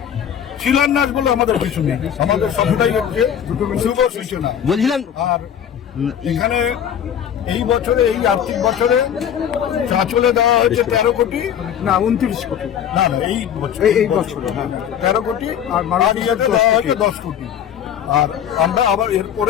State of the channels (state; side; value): quieter; right; 9.1 dB